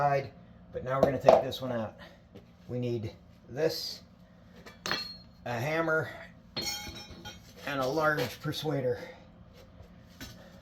but now we're going to take this one out. We need this, a hammer, and a large persuader.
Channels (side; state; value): both; identical; correlation 1.00